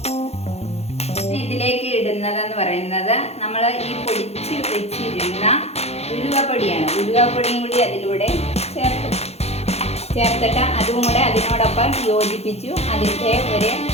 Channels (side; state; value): right; late; 0.31 ms